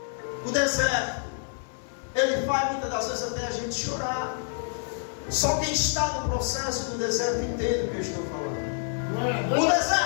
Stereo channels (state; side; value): silent; right; 56 dB below the other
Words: O deserto, ele faz muitas das vezes até a gente chorar. Só quem está no processo do deserto entende o que eu estou falando. O